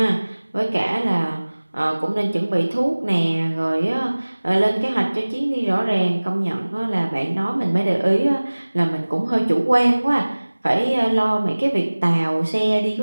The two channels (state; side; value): inverted; both; correlation -1.00